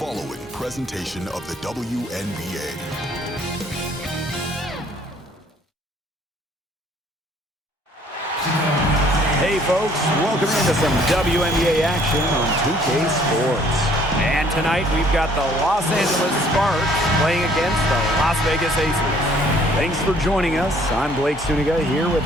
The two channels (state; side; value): normal; both; correlation 0.59